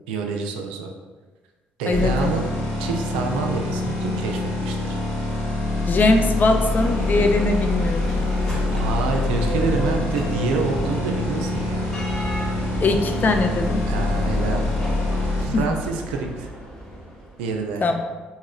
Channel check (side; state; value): both; normal; correlation 0.71